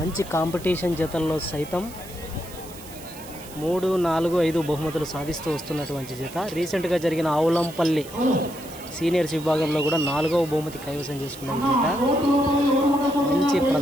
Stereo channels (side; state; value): right; noise; hiss, 17 dB below the sound